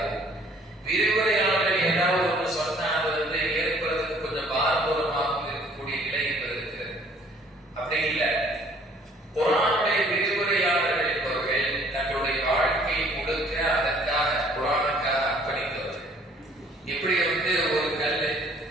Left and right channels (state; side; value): normal; both; correlation 0.58